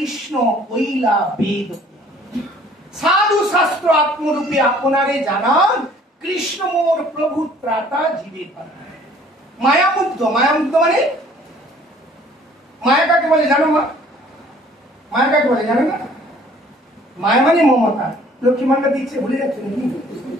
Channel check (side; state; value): both; normal; correlation 0.55